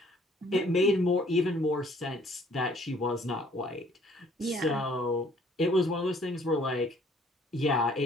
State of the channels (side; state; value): both; normal; correlation 0.59